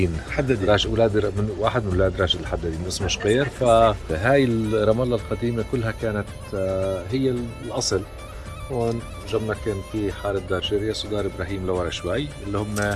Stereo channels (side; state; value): both; identical; correlation 1.00